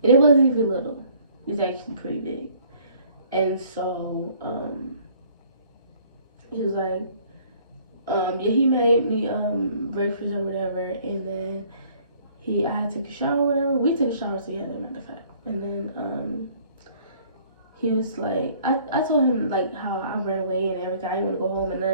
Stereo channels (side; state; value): both; inverted; correlation -0.58